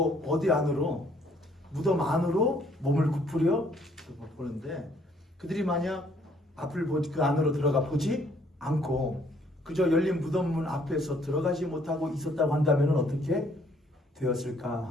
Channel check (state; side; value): normal; both; correlation 0.64